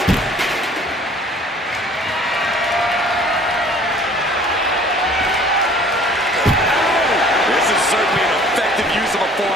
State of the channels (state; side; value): normal; both; correlation 0.52